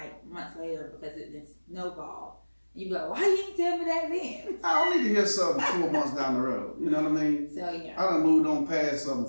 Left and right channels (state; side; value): inverted; both; correlation -1.00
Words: months later because it then snowballed. You be like, why you didn't tell me that then? I don't need to hear something 4 months down the road. You know what I mean? So yeah. I done moved on past